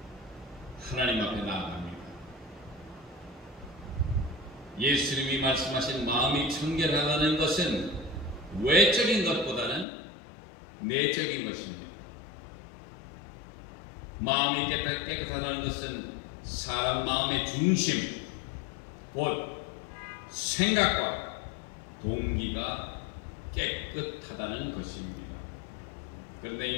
하나님 앞에 나아갑니다. 예수님이 말씀하신 마음이 청결하다는 것은 외적인 것보다는 내적인 것입니다. 마음이 깨끗하다는 것은 사람 마음의 중심, 곧 생각과 동기가 깨끗하다는 것입니다. 그런데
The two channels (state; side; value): drops out; right; at 9.9 s